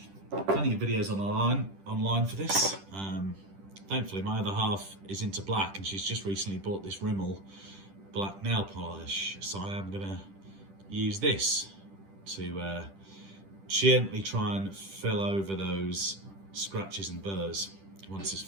plenty of videos online for this. Thankfully my other half is into black and she's just recently bought this Rimmel black nail polish, so I am gonna use this to gently try and fill over those scratches and burrs once it's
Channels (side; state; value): left; late; 10 ms